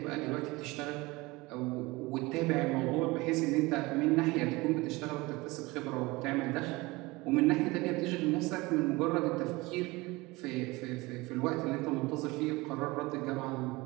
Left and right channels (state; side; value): quieter; left; 22.4 dB